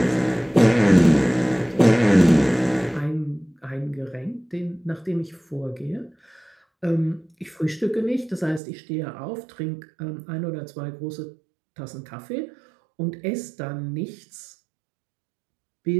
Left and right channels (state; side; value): drops out; left; at 8.6 s